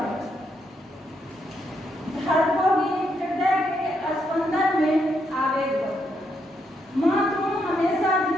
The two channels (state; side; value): normal; both; correlation 0.78